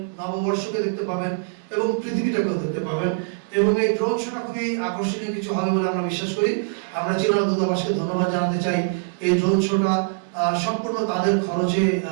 নববর্ষকে দেখতে পাবেন এবং পৃথিবীটাকেও দেখতে পাবেন। এবং এই ড্রোন শোটা খুবই আকর্ষণীয় কিছু হবে বলে আমরা বিশ্বাস করি। আমরা চীনা দূতাবাসকে ধন্যবাদ জানাতে চাই এই ড্রোন শোটা সম্পূর্ণ তাদের খরচে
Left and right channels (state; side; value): quieter; left; 34.1 dB